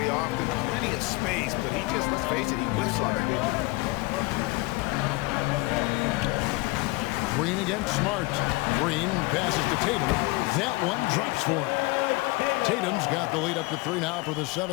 often. Plenty of space, but he just, let's face it, he whiffs on that one. Green against Smart. Green passes to Tatum. That one drops for him. Tatum's got the lead up to 3 now for the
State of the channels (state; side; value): quieter; right; 23.9 dB